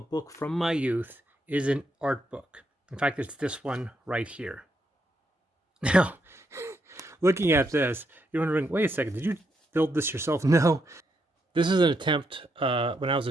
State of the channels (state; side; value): normal; both; correlation 0.79